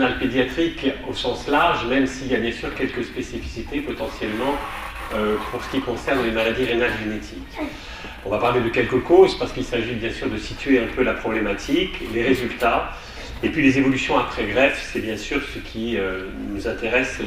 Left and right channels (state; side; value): identical; both; correlation 1.00